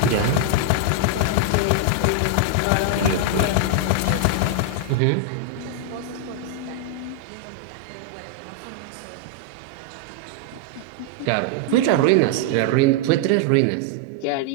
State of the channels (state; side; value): different; both; correlation 0.00